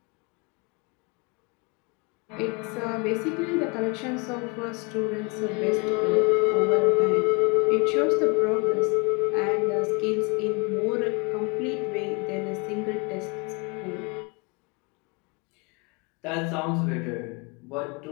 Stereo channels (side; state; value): right; quieter; 30.9 dB